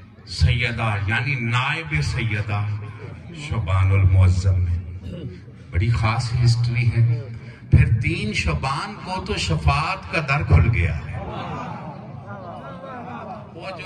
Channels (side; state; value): both; identical; correlation 1.00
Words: सैयदा यानी नायब सैयदा शोबानुल मुअज्जम में बड़ी खास हिस्ट्री है। फिर 3 शबान को तो शफात का दर खुल गया है। वो